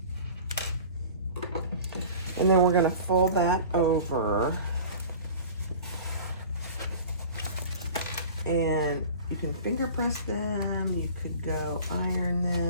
And then we're going to fold that over. And you can finger press them. You could go iron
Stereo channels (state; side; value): inverted; both; correlation -0.41